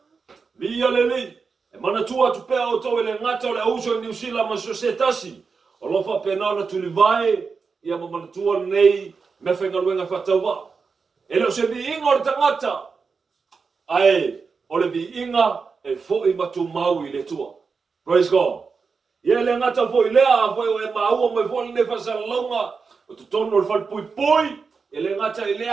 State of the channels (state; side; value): quieter; left; 5.0 dB